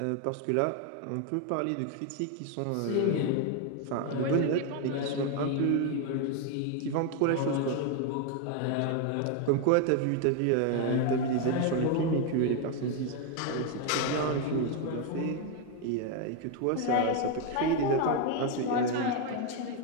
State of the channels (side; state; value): both; different; correlation 0.01